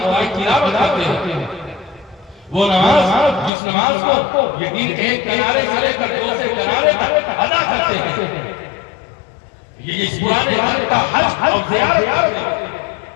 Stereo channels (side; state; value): right; drops out; at 3.5 s